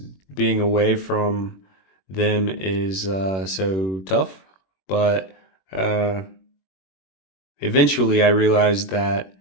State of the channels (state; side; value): late; right; 21 ms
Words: being away from them is so tough. But uh, eventually, I realized that